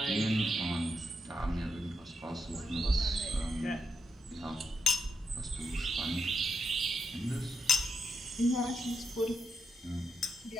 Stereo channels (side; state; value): both; normal; correlation 0.83